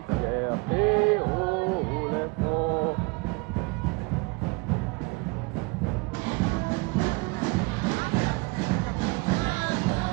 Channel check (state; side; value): quieter; left; 26.9 dB